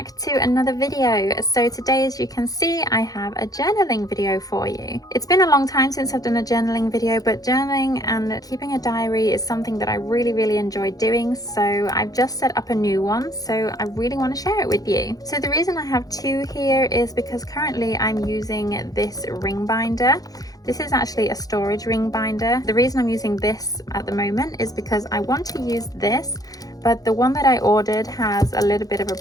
to another video. So today, as you can see, I have a journaling video for you. It's been a long time since I've done a journaling video, but journaling and keeping a diary is something that I really enjoy doing. So I've just set up a new one, so I really want to share it with you. So the reason I have two here is because currently I'm using this ring binder. This is actually a storage ring binder. The reason I'm using this at the moment is because I want to use this, but the one that I ordered has a little bit of a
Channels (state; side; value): late; right; 0.18 ms